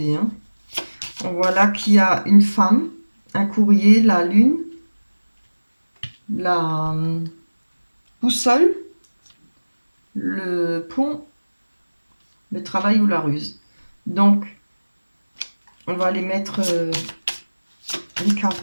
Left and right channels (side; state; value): both; inverted; correlation -1.00